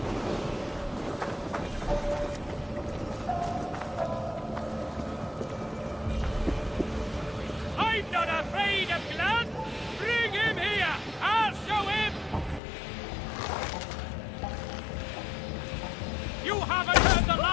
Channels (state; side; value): drops out; right; at 12.6 s